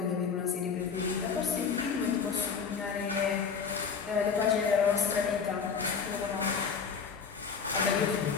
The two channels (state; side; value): quieter; right; 6.0 dB